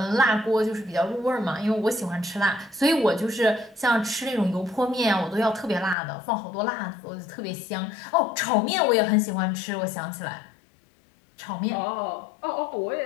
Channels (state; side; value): drops out; right; at 6.0 s